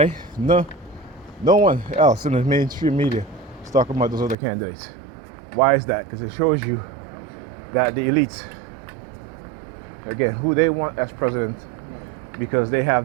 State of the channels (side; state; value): left; drops out; at 4.4 s